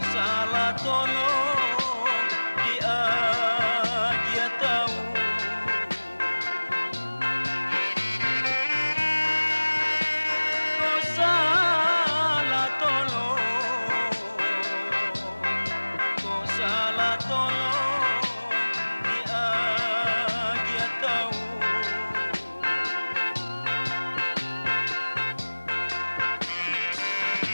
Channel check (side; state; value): both; inverted; correlation -1.00